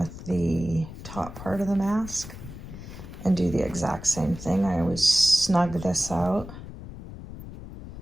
the top part of the mask and do the exact same thing. I always snug this out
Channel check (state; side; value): noise; left; rumble, 12 dB below the sound